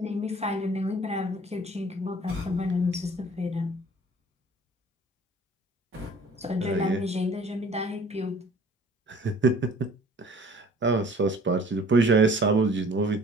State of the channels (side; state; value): both; normal; correlation 0.50